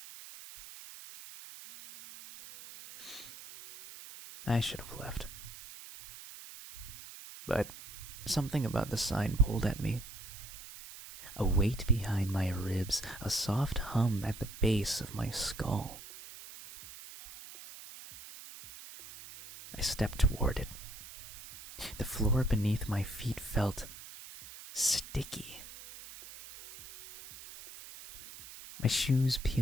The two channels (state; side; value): noise; right; hiss, 14 dB below the sound